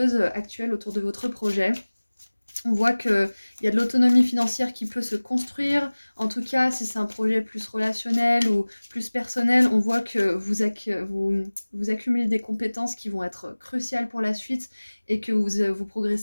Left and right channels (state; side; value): inverted; both; correlation -1.00